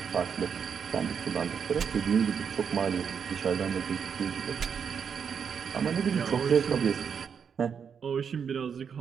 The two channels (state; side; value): quieter; left; 7.0 dB